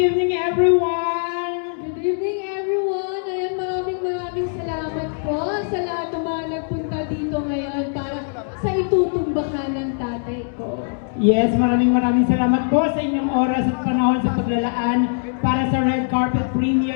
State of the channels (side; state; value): right; silent; 65 dB below the other